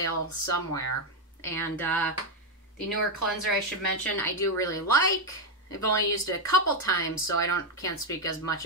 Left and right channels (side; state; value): both; normal; correlation 0.05